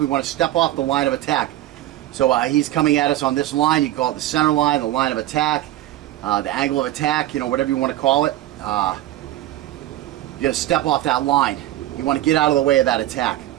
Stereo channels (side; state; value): left; quieter; 14.3 dB